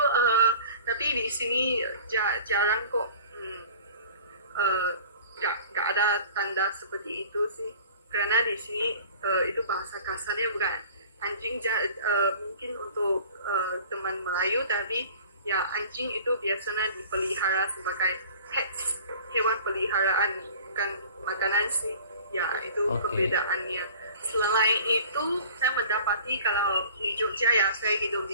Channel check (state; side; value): inverted; both; correlation -0.45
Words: tapi di sini jarang kok nggak ada tanda seperti itu sih. Karena di sini itu bahasa kasarnya bukan anjing, mungkin untuk teman Melayu, tapi ya anjing itu biasanya dipelihara sebagai pets, hewan peliharaan, bukan makanan sih. Ya, itu perbedaannya. Selain itu, saya mendapati kalau di Jogja ya, saya hidup